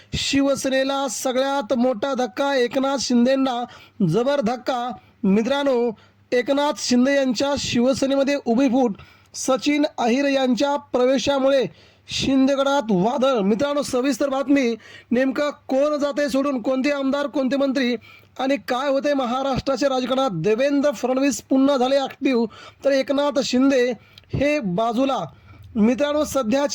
शिवसेनेला सगळ्यात मोठा धक्का, एकनाथ शिंदेंना जबर धक्का। मित्रांनो, एकनाथ शिंदे यांच्या शिवसेनेमध्ये उभी फूट, सचिन अहिर यांच्या प्रवेशामुळे शिंदेगडात वादळ। मित्रांनो, सविस्तर बातमी, नेमका कोण जाते सोडून, कोणते आमदार, कोणते मंत्री आणि काय होते महाराष्ट्राच्या राजकारणात। देवेंद्र फडणवीस पुन्हा झाले ॲक्टिव्ह तर एकनाथ शिंदे हे बाजूला। मित्रांनो,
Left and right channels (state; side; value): identical; both; correlation 1.00